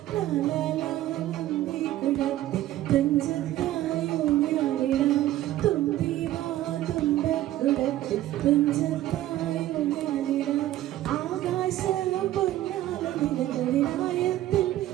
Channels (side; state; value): left; quieter; 14.2 dB